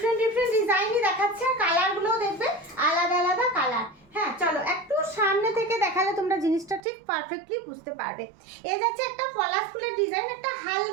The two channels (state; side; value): drops out; left; at 6.8 s